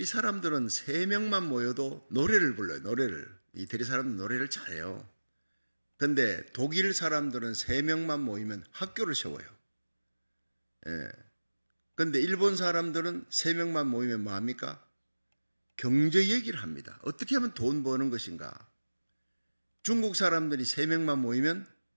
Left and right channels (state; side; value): inverted; both; correlation -1.00